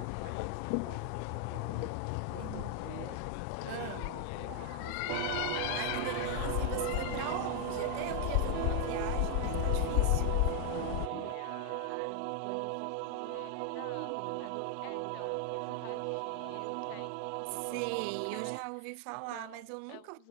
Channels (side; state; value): both; different; correlation 0.00